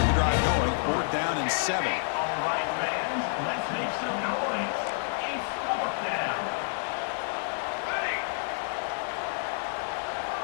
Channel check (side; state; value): right; silent; digital silence